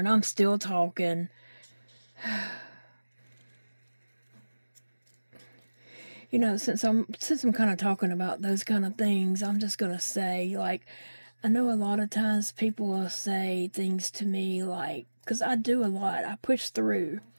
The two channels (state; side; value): inverted; both; correlation -1.00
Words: I'm still talking. Since I'm kind of talking about those kind of things, I'm just going to say, like, I know a lot of times people will say things to me like, because I do a lot. I push through.